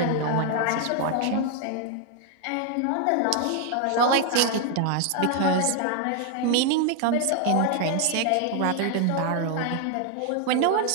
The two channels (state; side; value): different; both; correlation 0.00